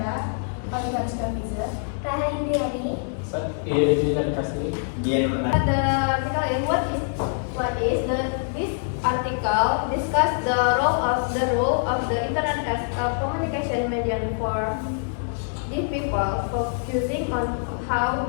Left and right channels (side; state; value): right; silent; digital silence